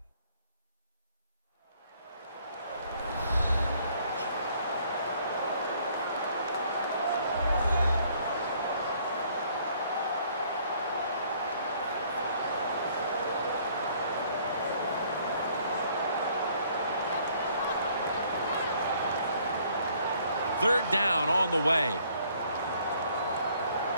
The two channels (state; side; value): inverted; both; correlation -0.62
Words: Third down on the way.